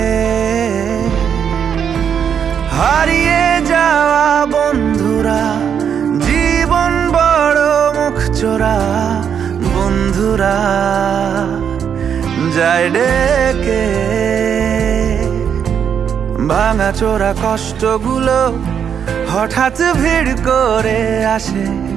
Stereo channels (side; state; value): left; quieter; 7.9 dB